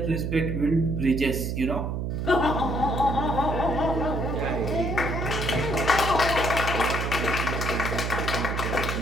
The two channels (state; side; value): noise; right; hum, 2 dB below the sound